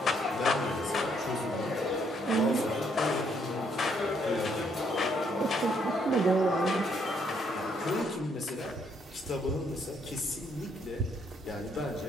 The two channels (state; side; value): normal; both; correlation 0.71